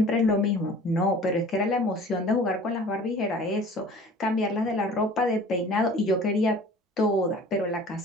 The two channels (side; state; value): both; normal; correlation 0.45